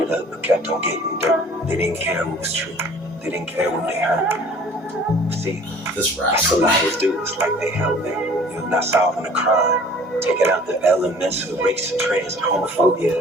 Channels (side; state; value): both; normal; correlation 0.49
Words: up, but kept on getting dirt. They didn't care what was true. They didn't care what they heard. See, this that's what liars do. It's like they help them. You're not solving a crime. Taking out the elements of race and trans and homophobia.